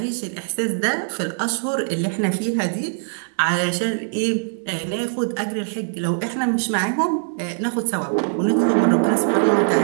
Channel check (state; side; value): silent; left; 60 dB below the other